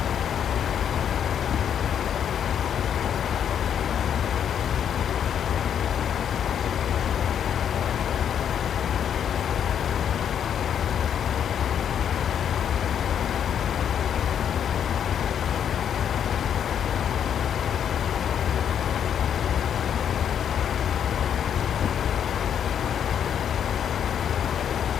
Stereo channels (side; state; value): right; quieter; 8.8 dB